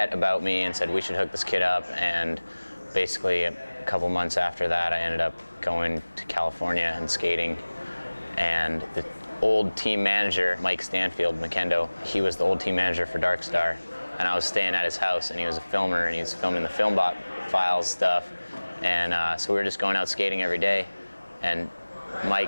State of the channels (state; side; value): inverted; both; correlation -1.00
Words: about me and said we should hook this kid up, and basically a couple months after that I ended up going to California and skating, and the old team manager, Mike Stanfield, McKendo, he was the old team manager for Darkstar, and I was staying at his house, and he was a filmer, and he was filming the FilmBot files stuff, and so we were just going out skating every day, and